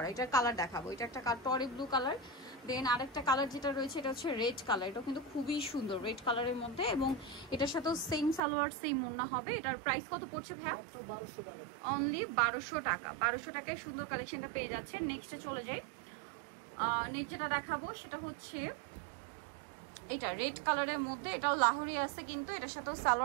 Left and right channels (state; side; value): drops out; left; at 8.4 s